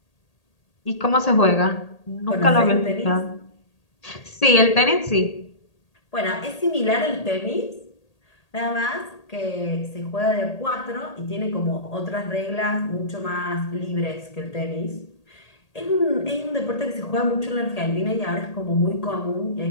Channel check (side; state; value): right; late; 1.8 ms